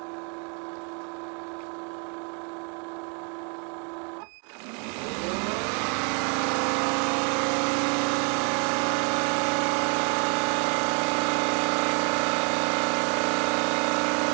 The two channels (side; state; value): left; quieter; 35.8 dB